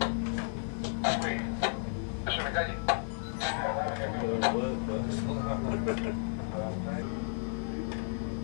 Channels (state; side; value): silent; right; 56 dB below the other